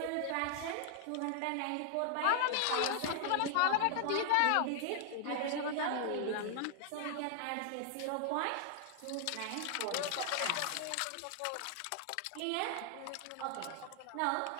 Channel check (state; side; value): different; both; correlation 0.00